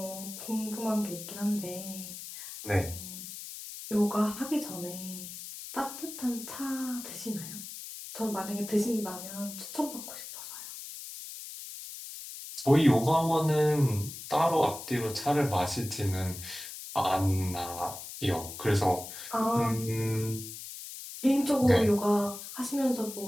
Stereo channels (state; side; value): noise; left; hiss, 11 dB below the sound